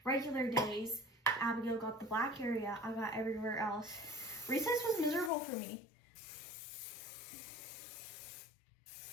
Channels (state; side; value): drops out; right; at 5.3 s